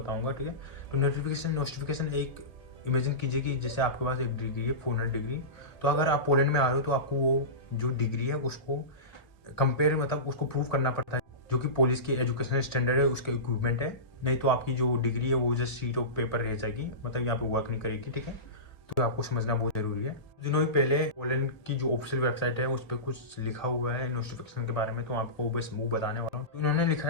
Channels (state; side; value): late; right; 1.8 ms